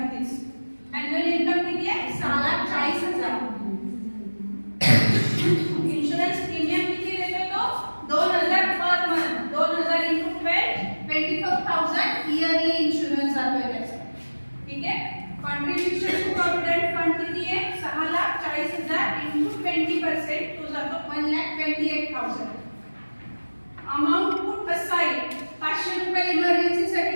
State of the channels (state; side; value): inverted; both; correlation -1.00